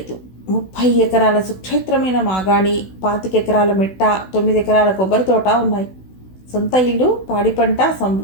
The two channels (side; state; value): right; late; 16 ms